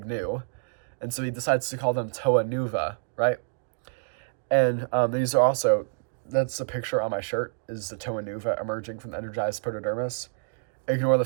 new. And so he decides to call them Toa Nuva, right? And these are also, that's a picture on my shirt, is the Toa Nuva emerging from the energized protodermis. Ignore the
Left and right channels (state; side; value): silent; left; digital silence